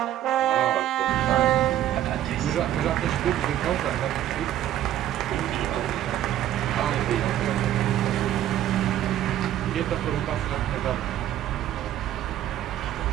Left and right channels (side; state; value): left; quieter; 12.1 dB